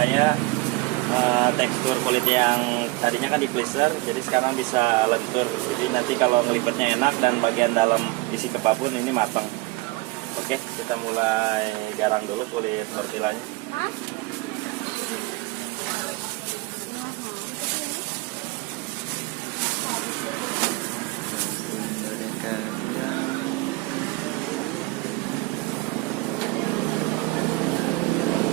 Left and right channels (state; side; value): quieter; left; 21.6 dB